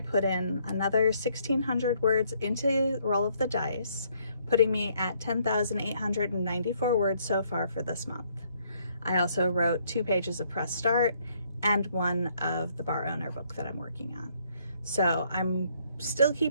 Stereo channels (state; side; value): inverted; both; correlation -0.68